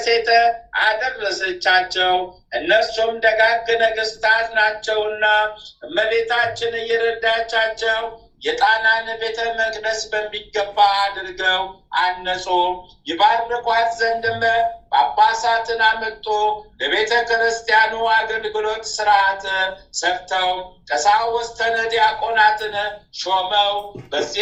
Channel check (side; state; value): both; identical; correlation 1.00